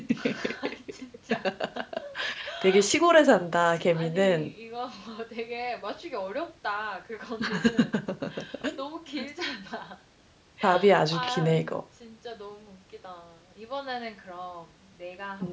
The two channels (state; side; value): identical; both; correlation 1.00